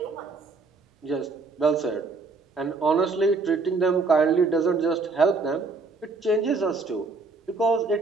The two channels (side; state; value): left; quieter; 4.0 dB